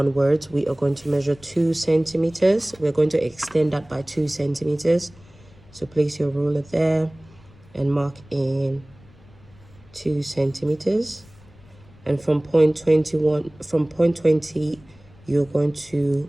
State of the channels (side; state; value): left; noise; rumble, 26 dB below the sound